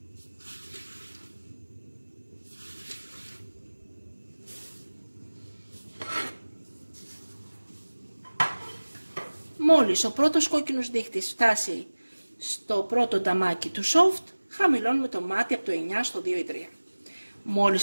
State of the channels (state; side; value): inverted; both; correlation -1.00